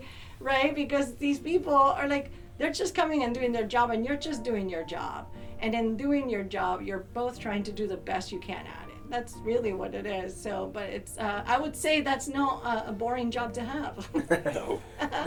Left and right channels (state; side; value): identical; both; correlation 1.00